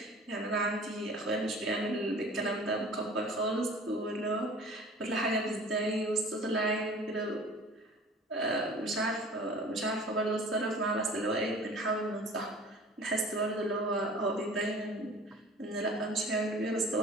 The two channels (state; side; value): normal; both; correlation 0.45